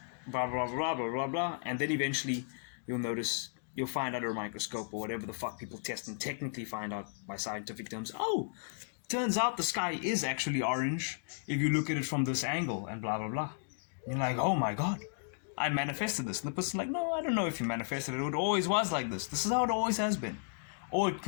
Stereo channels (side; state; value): right; silent; digital silence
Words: blah, blah, blah, blah, blah, blah, and then eventually you'll notice, you'll find under a microscope or whatever the fuck people test and technically find out by scientific terms, oh, turns out the sky is actually orange if you look at it from this angle, and blah, blah, blah. You're like, oh my god, I manifested this. And the person's like, no, I don't know if you manifested it. It always was like this. This is how it always has been. Or it